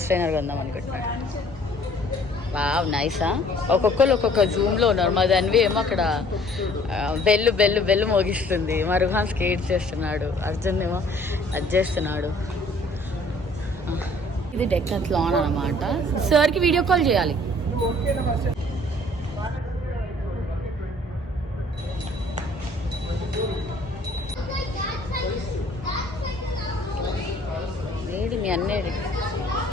ట్రైనర్ కొందాం అనుకుంటున్నాడు. వావ్, నైసా. ఒక్కొక్కరు ఒక్కొక్క జూమ్లో ఉన్నారు. మా దానివి ఏమో అక్కడ బెల్లు మోగిస్తుంది. మా రుహాన్ స్కేట్ చేస్తున్నాడు, అర్జున్ ఏమో అది చేస్తున్నాడు. ఇది డెక్కత్లాన్ అనమాట. సార్కి వీడియో కాల్ చేయాలి. ఏది మీ అన్నేది?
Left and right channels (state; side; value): normal; both; correlation 0.56